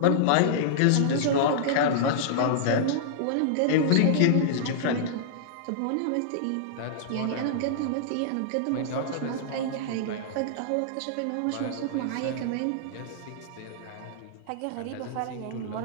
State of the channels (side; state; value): both; different; correlation -0.02